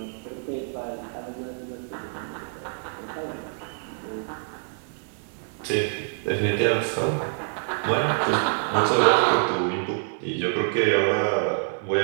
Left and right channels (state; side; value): silent; left; 61 dB below the other